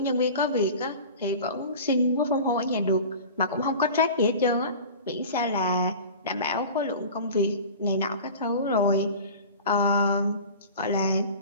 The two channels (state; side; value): inverted; both; correlation -0.37